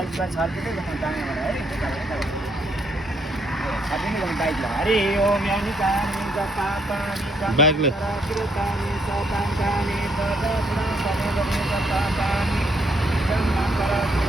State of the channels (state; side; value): normal; both; correlation 0.72